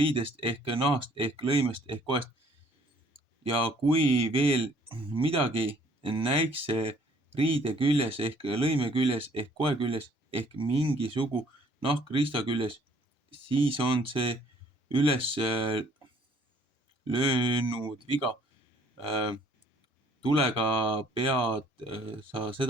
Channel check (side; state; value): both; normal; correlation 0.59